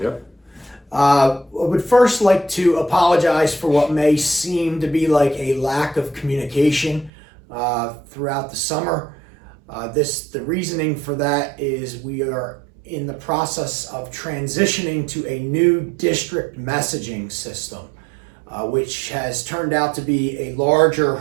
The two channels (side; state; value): left; drops out; at 7.1 s